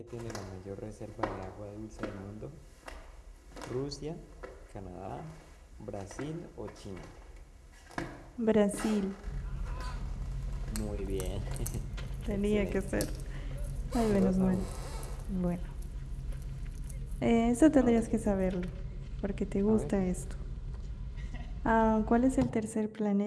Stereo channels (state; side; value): identical; both; correlation 1.00